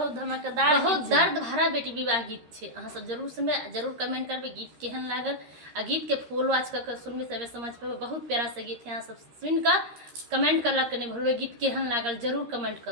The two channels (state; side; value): late; left; 13 ms